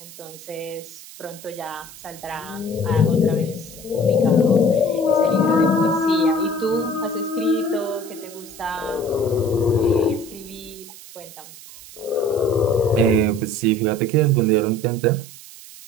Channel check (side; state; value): right; noise; hiss, 17 dB below the sound